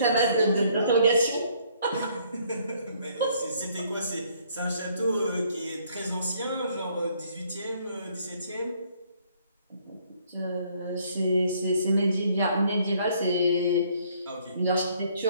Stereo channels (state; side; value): inverted; both; correlation -0.64